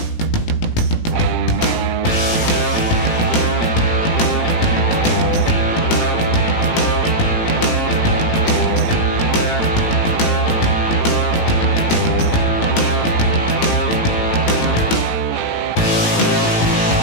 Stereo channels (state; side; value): late; right; 18 ms